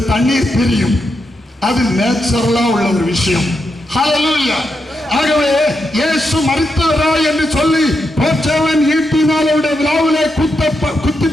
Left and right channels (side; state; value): both; normal; correlation 0.84